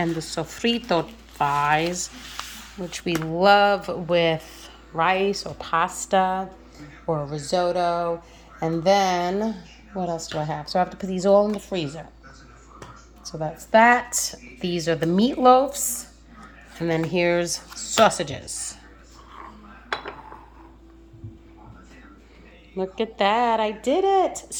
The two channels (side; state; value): both; identical; correlation 1.00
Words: the sofrito thighs, which we love with rice or pasta or risotto. And then, what else do I have? So I have to put these all in the freezer. So that's that. These are the meatloafs. And then here's sausages. Look at that, I did it.